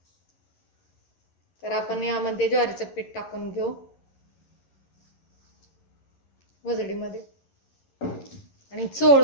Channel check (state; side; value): late; right; 11 ms